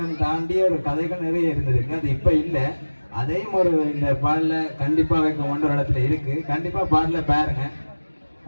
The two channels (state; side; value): inverted; both; correlation -1.00